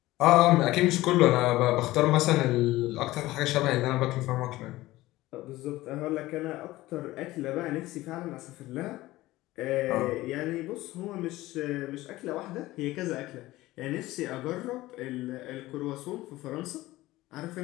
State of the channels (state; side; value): quieter; right; 17.7 dB